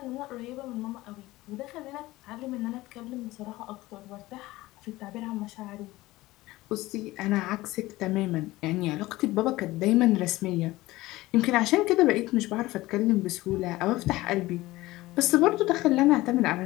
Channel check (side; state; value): right; quieter; 18.6 dB